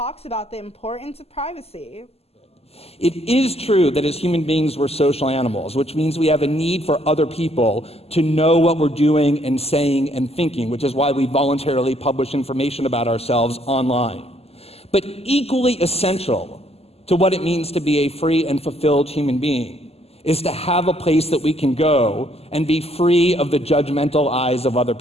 about the importance of privacy. It is true that as human beings we're social animals, which means we have a need for other people to know what we're doing and saying and thinking, which is why we voluntarily publish information about ourselves online. But equally essential to what it means to be a free and fulfilled human being is to have a place that we can go and be free of the judgmental eyes of other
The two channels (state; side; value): late; right; 0.29 ms